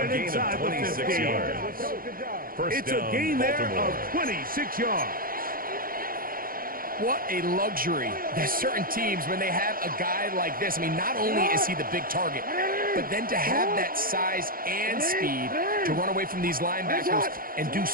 it gain inside of the 26 15. yards. First It's down, a gain there Baltimore. of 26 yards. What a luxury. There's certain teams, when they have a guy like this, I mean, not only is he the big target, but then to have that size and speed to run away from these linebackers and do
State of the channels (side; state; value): left; late; 0.42 ms